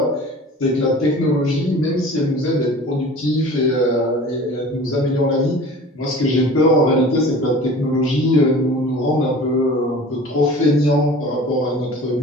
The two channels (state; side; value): normal; both; correlation 0.41